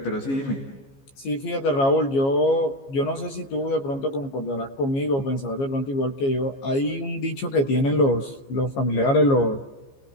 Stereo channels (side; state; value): right; late; 15 ms